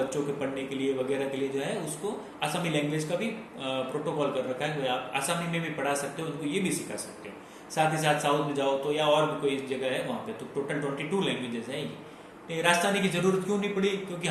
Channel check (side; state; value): both; identical; correlation 1.00